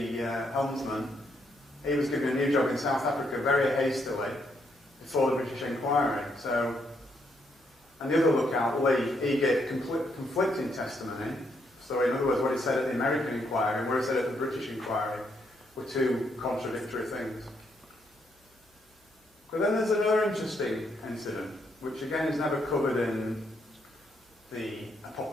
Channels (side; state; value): both; normal; correlation 0.75